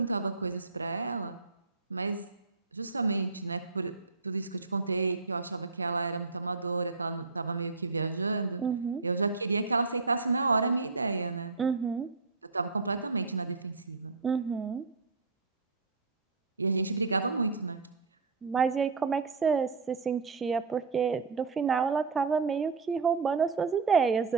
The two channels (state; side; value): quieter; left; 4.3 dB